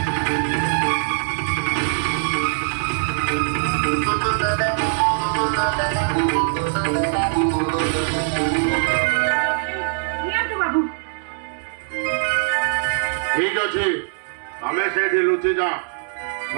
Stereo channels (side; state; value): left; silent; digital silence